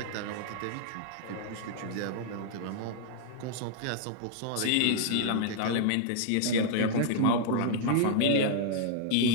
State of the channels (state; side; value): different; both; correlation -0.01